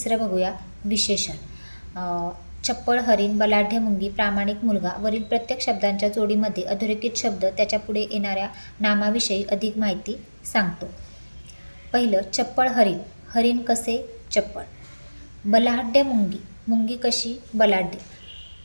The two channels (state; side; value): inverted; both; correlation -1.00